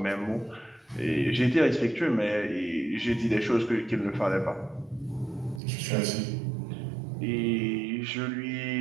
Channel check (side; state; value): left; drops out; at 5.6 s